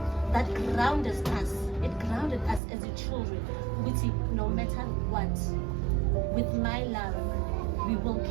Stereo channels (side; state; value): left; drops out; at 2.6 s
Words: That grounded us. It grounded us as your children. Which no matter what, with my love, we will